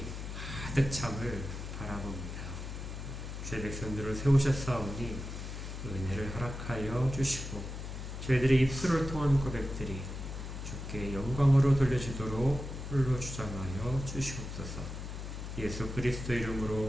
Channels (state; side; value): noise; left; hum, 7 dB below the sound